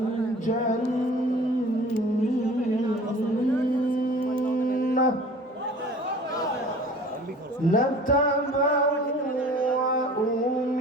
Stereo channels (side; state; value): both; normal; correlation 0.45